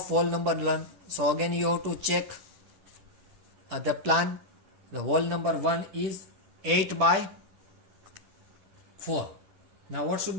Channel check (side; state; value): left; late; 11 ms